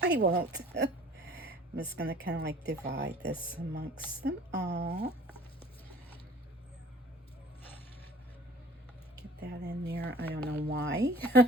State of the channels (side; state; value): both; normal; correlation 0.49